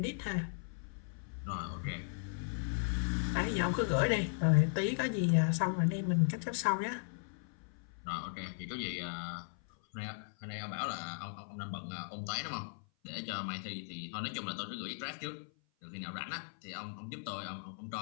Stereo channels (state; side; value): silent; right; 53 dB below the other